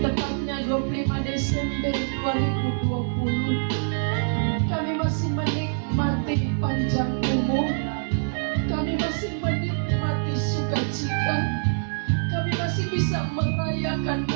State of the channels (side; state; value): left; silent; digital silence